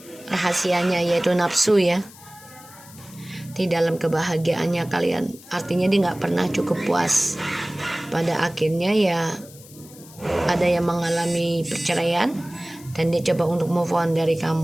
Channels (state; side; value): noise; left; hiss, 21 dB below the sound